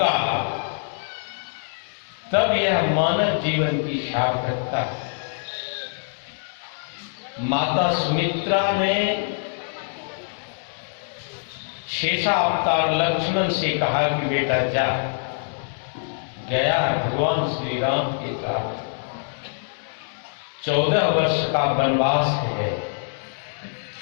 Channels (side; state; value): right; silent; digital silence